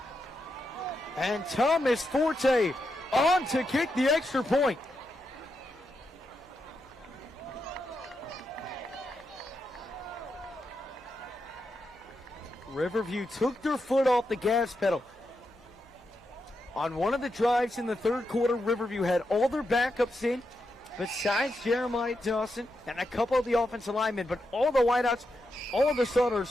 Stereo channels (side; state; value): both; normal; correlation 0.85